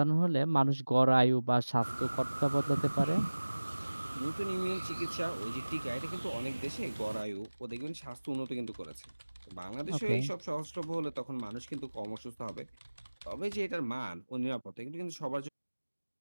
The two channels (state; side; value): inverted; both; correlation -1.00